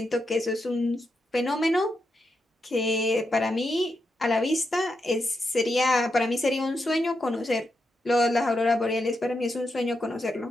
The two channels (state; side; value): normal; both; correlation 0.85